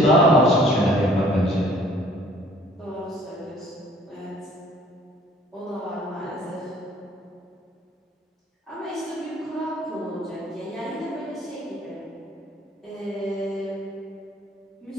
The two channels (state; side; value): normal; both; correlation 0.56